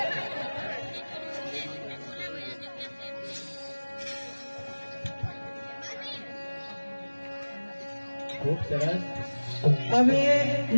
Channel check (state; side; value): inverted; both; correlation -1.00